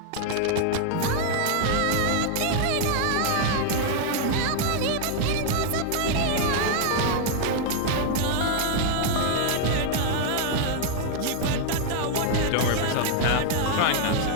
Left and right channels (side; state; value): both; different; correlation 0.00